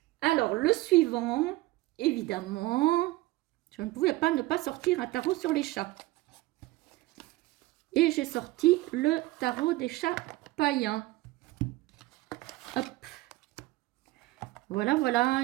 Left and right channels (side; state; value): left; quieter; 18.8 dB